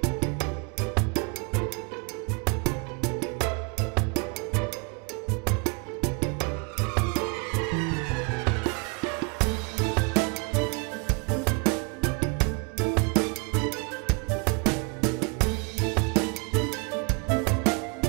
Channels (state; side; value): quieter; left; 31.8 dB